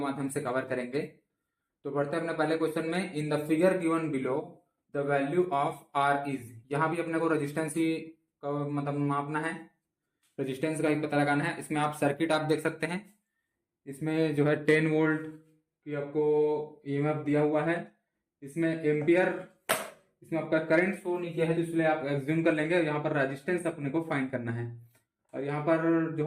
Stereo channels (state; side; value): identical; both; correlation 1.00